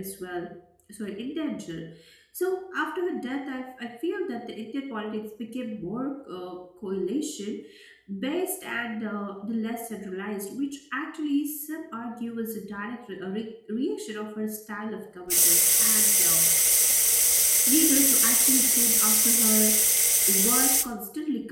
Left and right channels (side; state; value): both; identical; correlation 1.00